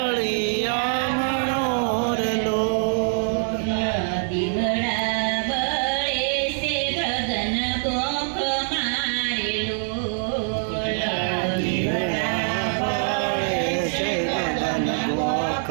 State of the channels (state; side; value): silent; left; digital silence